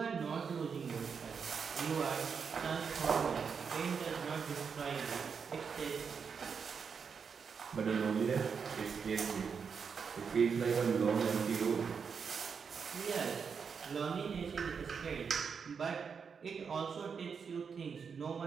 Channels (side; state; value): left; quieter; 6.1 dB